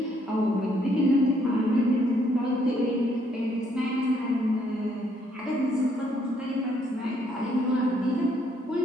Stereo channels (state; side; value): normal; both; correlation 0.69